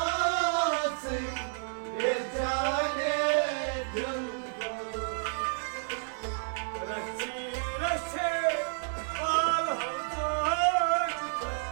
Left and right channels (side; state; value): left; silent; digital silence